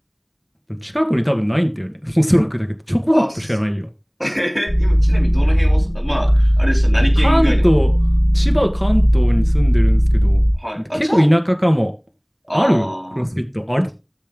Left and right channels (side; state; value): both; identical; correlation 1.00